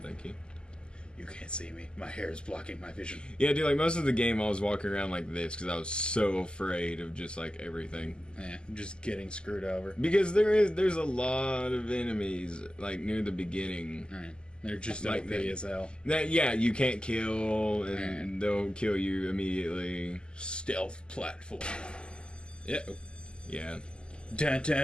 Thank you. You can't see me. My hair is blocking my vision. Yeah, dude, like most of the game I was walking around like this because I was so afraid of just like everything. Yeah, just getting screwed over. Because there's a lot of enemies like near the beginning. Right. They're just Like OP that. as hell. That you can't kill and they'll kill you immediately. Stealth platform. Yeah. Yeah. Dun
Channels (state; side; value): late; right; 0.048 ms